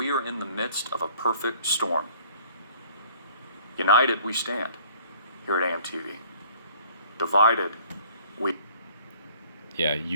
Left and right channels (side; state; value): both; inverted; correlation -0.54